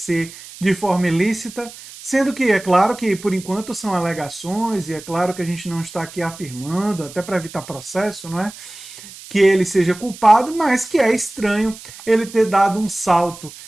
de forma ilícita? Sendo que é claro que por enquanto são alegações e é claro que a gente não está aqui afirmando, até para evitar processo, não é? Que ele seja culpado, mas que é estranho ele ter dado um salto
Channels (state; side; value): noise; right; hiss, 17 dB below the sound